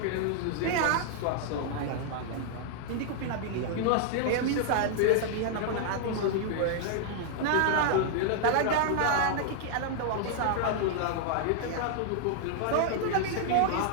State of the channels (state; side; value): different; both; correlation -0.01